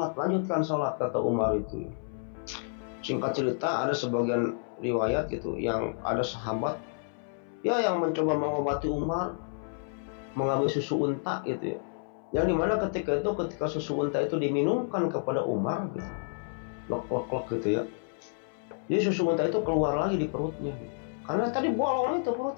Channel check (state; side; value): silent; right; 58 dB below the other